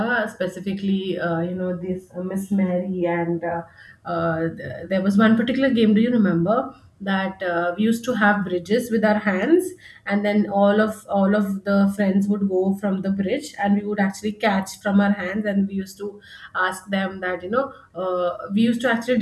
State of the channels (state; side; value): identical; both; correlation 1.00